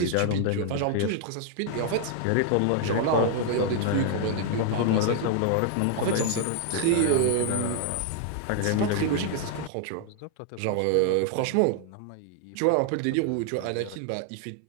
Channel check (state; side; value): different; both; correlation 0.00